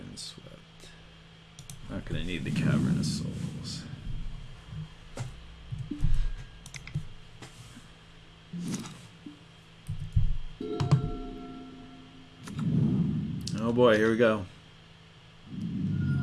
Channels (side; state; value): both; identical; correlation 1.00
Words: Not going to need the Cavern of Souls. Oh boy, here we go.